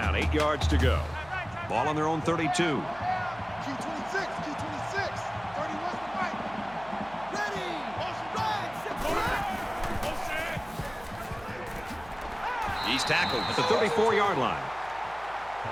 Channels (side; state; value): right; noise; hum, 21 dB below the sound